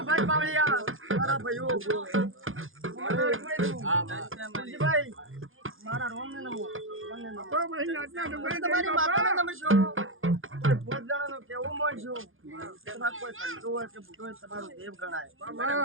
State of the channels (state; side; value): late; left; 0.59 ms